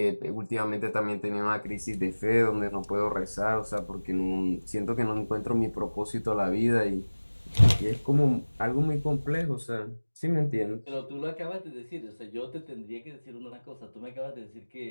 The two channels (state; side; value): inverted; both; correlation -1.00